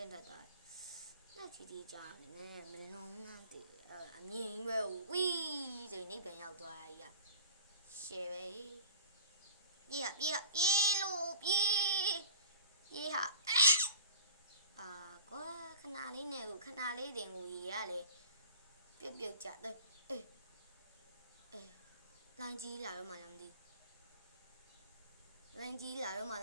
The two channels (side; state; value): both; inverted; correlation -0.43